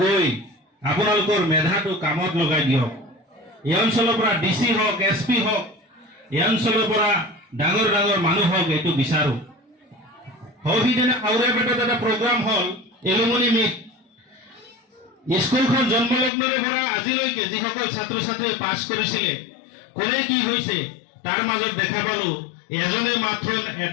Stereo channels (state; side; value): drops out; right; at 16.3 s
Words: গৈ আপোনালোকৰ মেধাটো কামত লগাই দিয়ক। এই অঞ্চলৰ পৰা ডিসি হওক এসপি হওক এই অঞ্চলৰ পৰা ডাঙৰ ডাঙৰ মানুহ হওক এইটো বিচাৰো। সৌহিদিনা আউৰাপেটত এটা প্ৰগ্ৰাম হল এলুমনি মিট। স্কুলখন জন্মলগ্নৰে পৰা আজিলৈকে যিসকল ছাত্ৰ ছাত্ৰীয়ে পাছ কৰিছিলে কোনে কি হৈছে তাৰ মাজত দেখা পালো এজনে মাত্ৰ